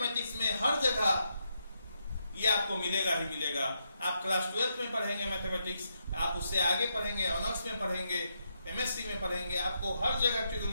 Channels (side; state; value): both; inverted; correlation -0.81